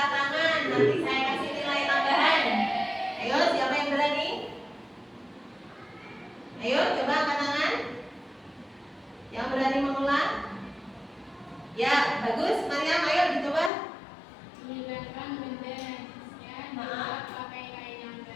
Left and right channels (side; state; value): right; drops out; at 13.7 s